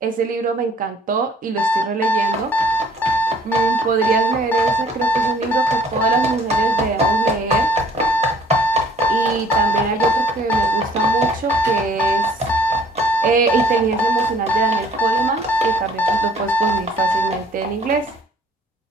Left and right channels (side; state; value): both; normal; correlation 0.57